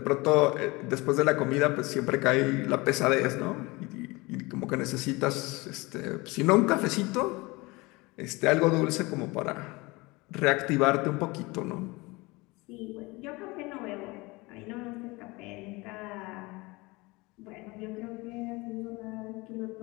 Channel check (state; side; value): quieter; right; 23.8 dB